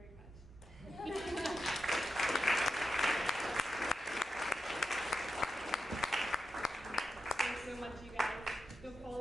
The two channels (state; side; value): normal; both; correlation 0.89